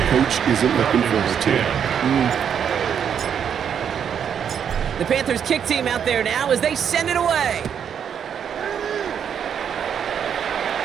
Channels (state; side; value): quieter; left; 8.1 dB